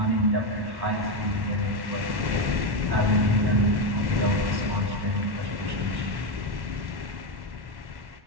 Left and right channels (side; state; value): left; late; 1.1 ms